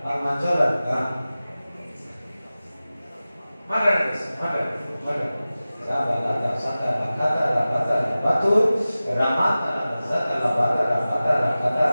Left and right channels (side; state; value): both; inverted; correlation -0.96